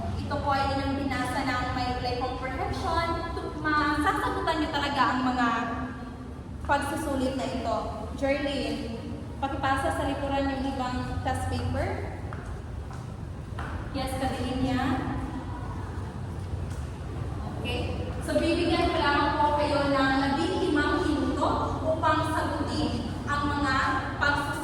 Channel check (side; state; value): both; identical; correlation 1.00